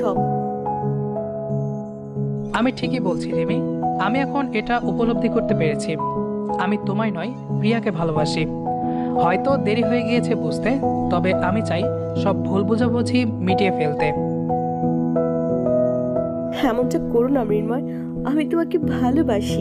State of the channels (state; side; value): identical; both; correlation 1.00